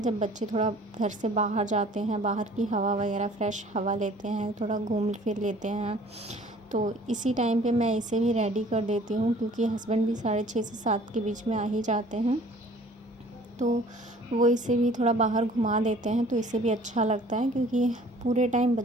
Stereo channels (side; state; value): both; normal; correlation 0.52